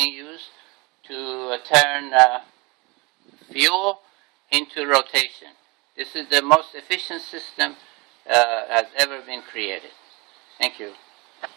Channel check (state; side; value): quieter; left; 26.2 dB